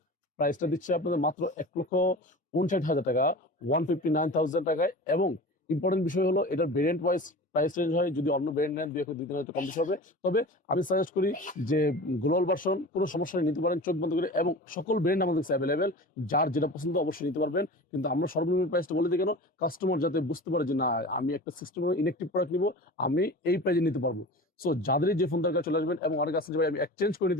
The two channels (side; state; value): both; normal; correlation 0.35